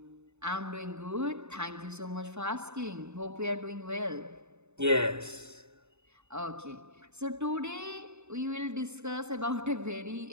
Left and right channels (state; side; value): late; left; 0.82 ms